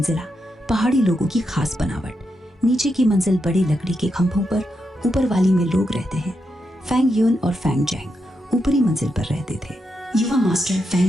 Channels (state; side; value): normal; both; correlation 0.84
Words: पहाड़ी लोगों की खास बनावट। नीचे की मंजिल बड़ी लकड़ी के खंभों पर, ऊपर वाली में लोग रहते हैं। फेंग यून और फेंग जेंग ऊपरी मंजिल पर रहते थे। युवा मास्टर